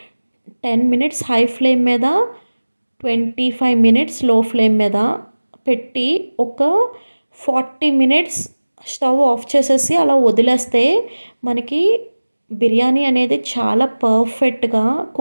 10 minutes high flame మీద, 25 మినిట్స్ లో ఫ్లేమ్ మీద పెట్టి ఒక 40 మినిట్స్ స్టవ్ ఆఫ్ చేసేసి అలా వదిలేస్తే మనకి బిర్యానీ అనేది చాలా పర్ఫెక్ట్‌గా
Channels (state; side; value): inverted; both; correlation -1.00